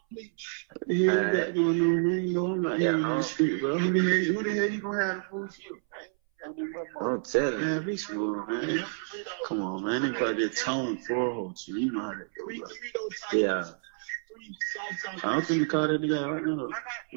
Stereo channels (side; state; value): left; silent; 58 dB below the other